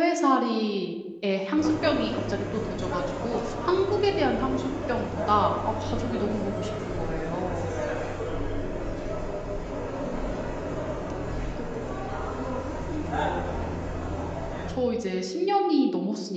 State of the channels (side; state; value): both; identical; correlation 1.00